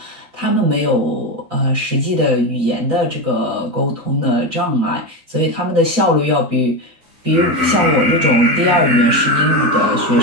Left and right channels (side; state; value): left; late; 12 ms